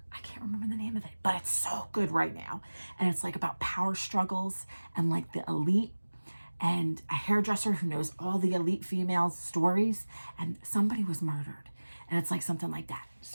I can't remember the name of it, but it's so good right now. And it's like about power struggles and like the elite, and a hairdresser who knows all the elite females' stories, and somebody was murdered. And it's like something like that.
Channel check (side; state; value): both; inverted; correlation -1.00